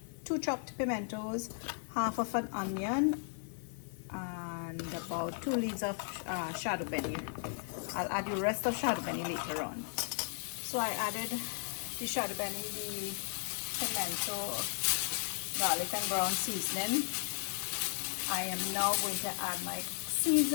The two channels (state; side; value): silent; right; digital silence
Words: two chopped pimentos, half of an onion, and about 2 leaves of shado beni. I'll add the rest of shado beni later on. So I added the shado beni, the pimento, garlic and ground seasoning. I am now going to add my